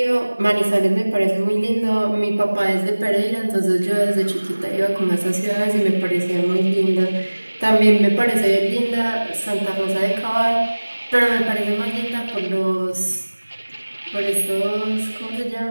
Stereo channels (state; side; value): inverted; both; correlation -1.00